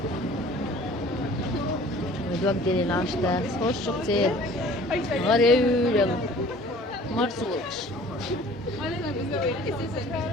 ويدوك ديلي لانشتا خوش كتير غريب يلا مرسولش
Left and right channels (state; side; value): normal; both; correlation 0.49